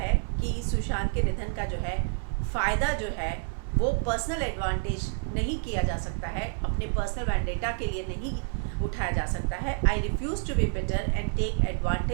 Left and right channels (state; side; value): silent; left; 59 dB below the other